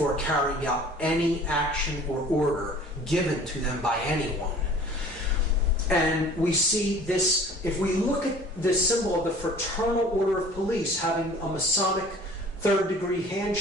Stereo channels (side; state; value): both; normal; correlation 0.47